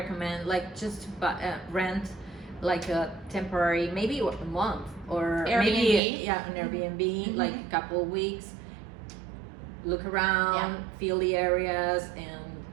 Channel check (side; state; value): left; drops out; at 6.0 s